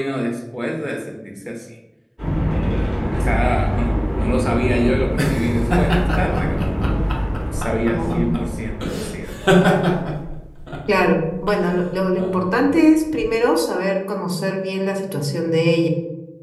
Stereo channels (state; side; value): identical; both; correlation 1.00